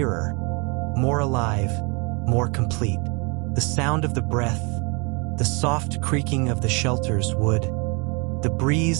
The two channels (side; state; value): left; quieter; 31.7 dB